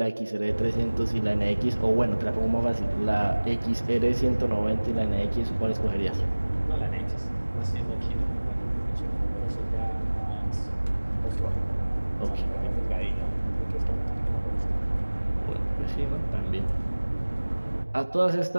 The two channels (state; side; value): inverted; both; correlation -1.00